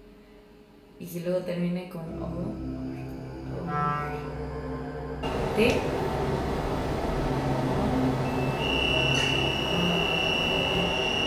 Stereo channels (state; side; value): identical; both; correlation 1.00